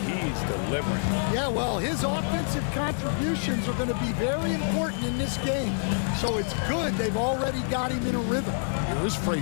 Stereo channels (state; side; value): silent; right; 57 dB below the other